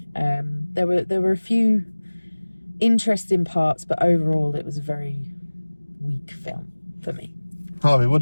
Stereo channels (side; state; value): both; inverted; correlation -1.00